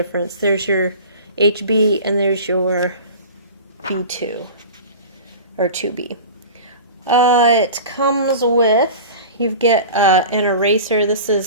There's your HB and there's your B2 or 2B. It comes with, you get an eraser. This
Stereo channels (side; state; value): both; inverted; correlation -0.36